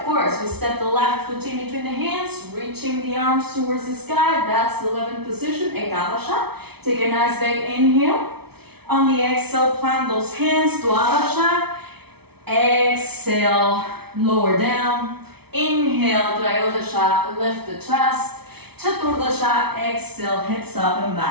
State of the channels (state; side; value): late; left; 0.97 ms